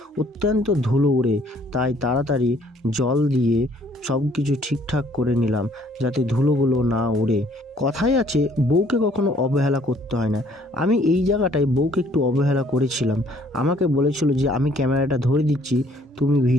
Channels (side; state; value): both; normal; correlation 0.61